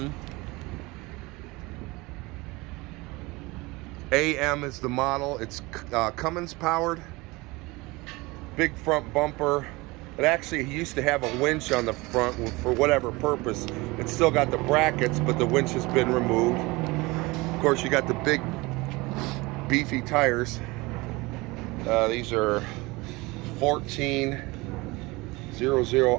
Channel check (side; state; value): left; quieter; 23.1 dB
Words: AM is the model. It's Cummins powered. Big front bumper. It actually used to have a winch on the front for whatever purpose. It's still got the brackets, but the winch has been removed. Of course, you got the big beefy tires. These are